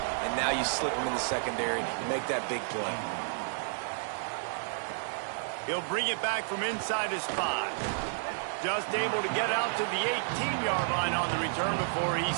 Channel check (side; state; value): left; silent; digital silence